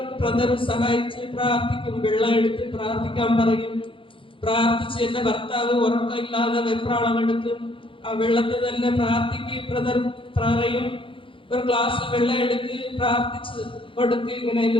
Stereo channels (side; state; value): right; late; 0.25 ms